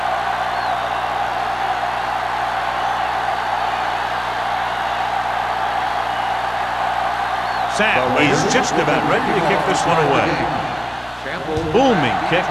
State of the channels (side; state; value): both; identical; correlation 1.00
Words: Sam is just about ready to kick this one away. Booming kick